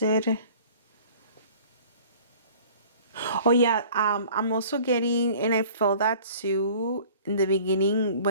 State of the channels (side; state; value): both; inverted; correlation -0.48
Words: it. Oh yeah, I'm also getting, and I felt that too in the beginning